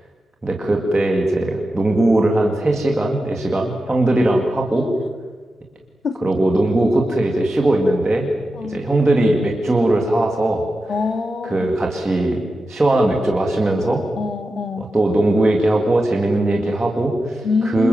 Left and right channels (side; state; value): both; normal; correlation 0.91